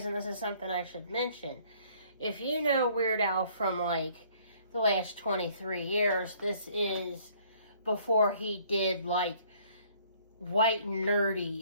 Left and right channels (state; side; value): inverted; both; correlation -0.60